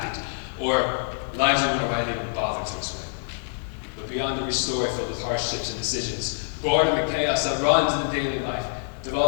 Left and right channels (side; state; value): right; silent; digital silence